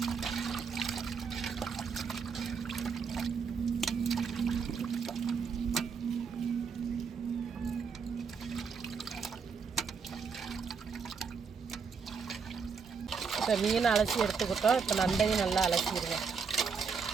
இப்போ மீன் அலசி எடுத்துக்கிட்டோம். இப்போ நண்டையும் நல்லா அலசிடுவோம்.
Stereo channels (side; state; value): left; quieter; 5.7 dB